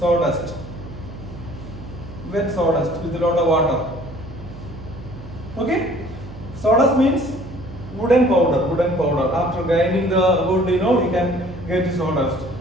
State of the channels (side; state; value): right; noise; hum, 14 dB below the sound